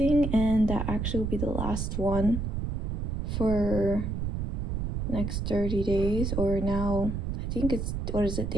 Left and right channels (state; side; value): noise; right; rumble, 1 dB below the sound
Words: and that actually will be the last one for next 30 days, or now I think it's, what is it,